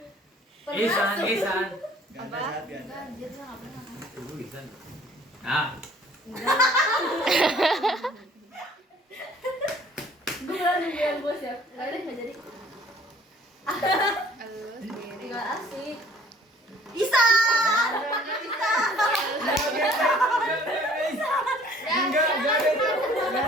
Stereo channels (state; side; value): normal; both; correlation 0.54